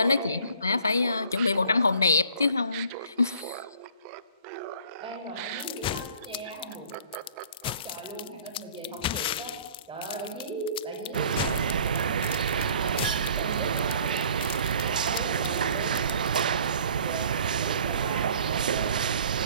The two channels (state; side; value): inverted; both; correlation -0.53